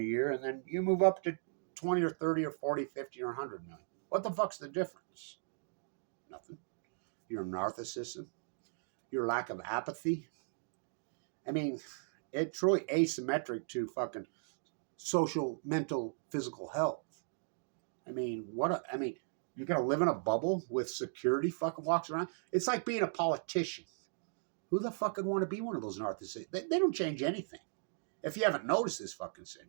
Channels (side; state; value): left; silent; digital silence